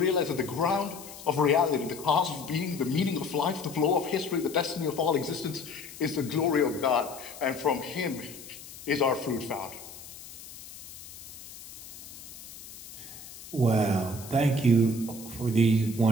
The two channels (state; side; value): noise; left; hiss, 15 dB below the sound